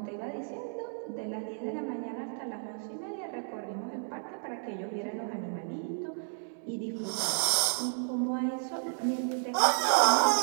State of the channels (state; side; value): silent; left; digital silence